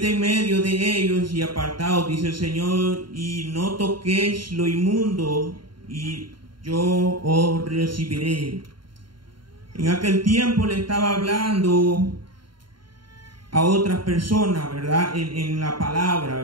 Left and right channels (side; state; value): left; late; 0.72 ms